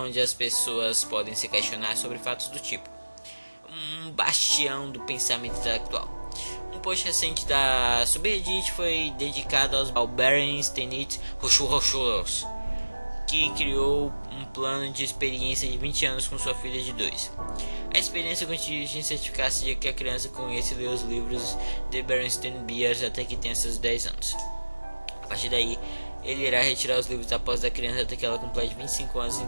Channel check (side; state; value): both; inverted; correlation -1.00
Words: as pessoas podem se questionar sobre fatos do tipo, um bastião do pensamento intelectual. Um post recente da subreddit foi dedicado ao Bernstein Rochus, que criou um plano de experiência de 20 anos com sua filha de 2. A experiência consiste em certificar-se de que a criança conhece e lê os livros de Bernstein Bears até que tenha seus 10 anos. A partir daí, ele irá retirar os livros após a criança até que ela complete 25 anos,